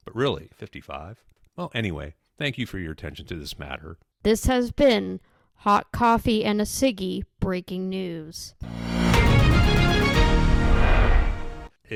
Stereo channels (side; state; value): both; identical; correlation 1.00